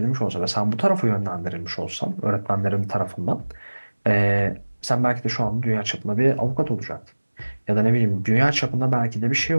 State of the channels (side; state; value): both; inverted; correlation -1.00